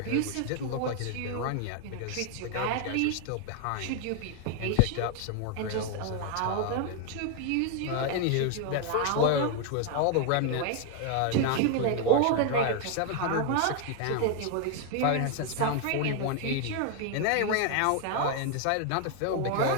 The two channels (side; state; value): both; different; correlation 0.00